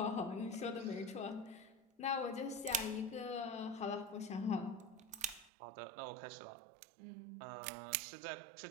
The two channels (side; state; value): left; drops out; at 5.5 s